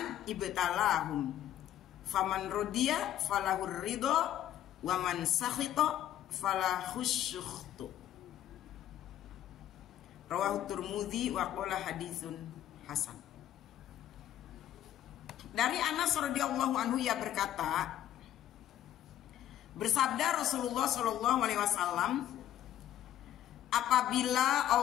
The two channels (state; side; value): quieter; right; 11.9 dB